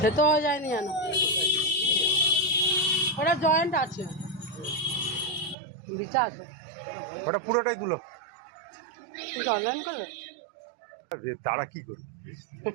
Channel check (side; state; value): left; drops out; at 5.6 s